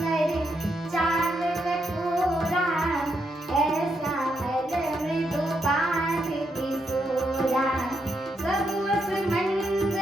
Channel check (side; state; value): both; normal; correlation 0.80